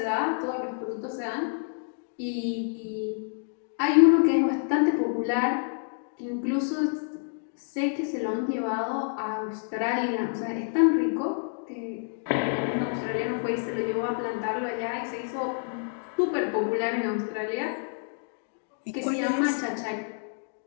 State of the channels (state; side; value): silent; right; 59 dB below the other